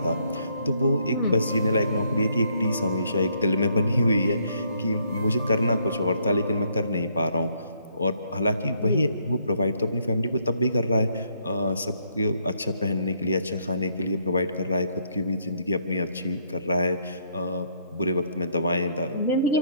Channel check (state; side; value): inverted; both; correlation -0.70